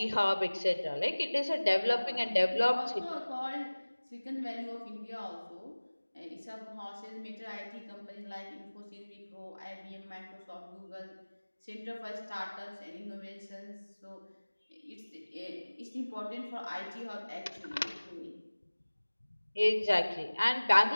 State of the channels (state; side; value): inverted; both; correlation -1.00